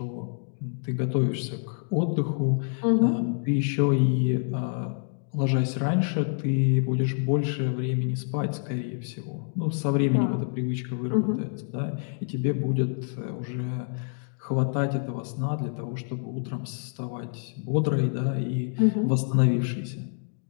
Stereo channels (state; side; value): silent; right; 60 dB below the other